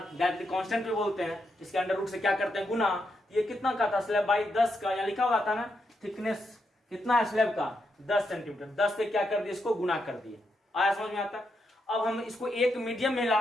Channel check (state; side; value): normal; both; correlation 0.82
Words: कांस्टेंट भी बोलते हैं, इसके अंडर रूट से क्या करते हैं गुना, ये कितना का था स्लैब बाई 10 का, यहाँ लिखा हुआ था ना थिकनेस कितना है स्लैब का 10 सेंटीमीटर, 10 से क्या कर दिए इसको गुना कर दिए, आया समझ में आता। अब हम इसको एक मीडियम में